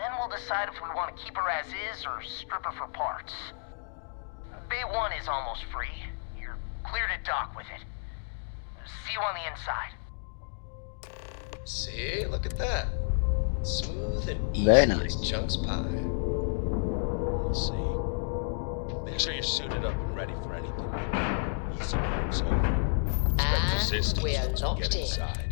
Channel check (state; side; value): silent; right; digital silence